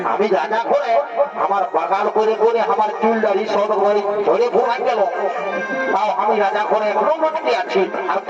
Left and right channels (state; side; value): identical; both; correlation 1.00